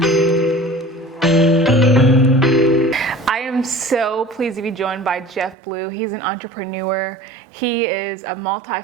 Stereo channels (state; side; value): drops out; left; at 5.6 s